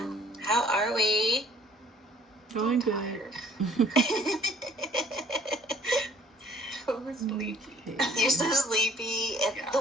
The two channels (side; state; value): both; normal; correlation 0.57